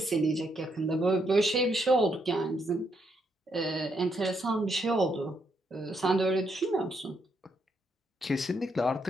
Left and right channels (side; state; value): both; normal; correlation 0.77